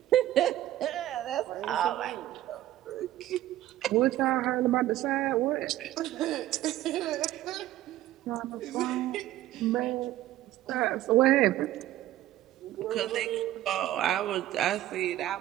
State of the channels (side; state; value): left; quieter; 14.2 dB